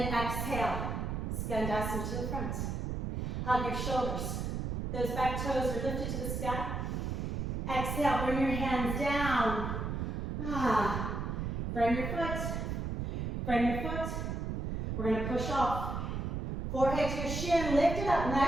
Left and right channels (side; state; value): right; noise; rumble, 2 dB below the sound